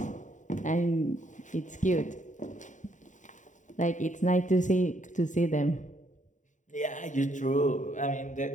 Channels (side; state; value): right; late; 0.36 ms